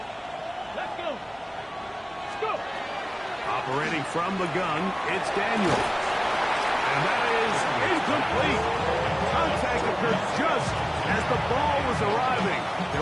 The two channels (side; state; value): both; identical; correlation 1.00